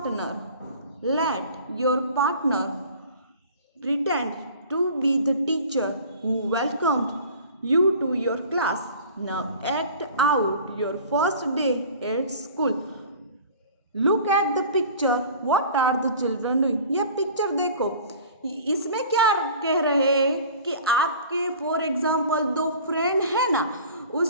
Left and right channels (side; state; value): both; inverted; correlation -0.44